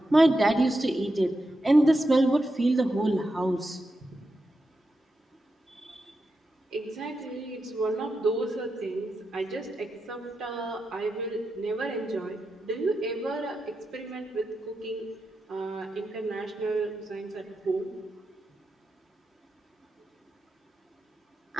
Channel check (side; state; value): both; normal; correlation 0.88